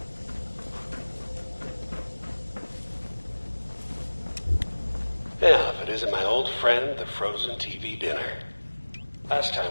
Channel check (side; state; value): both; inverted; correlation -1.00